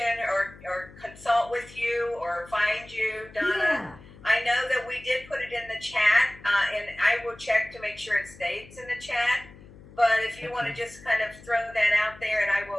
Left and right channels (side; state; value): left; noise; hum, 20 dB below the sound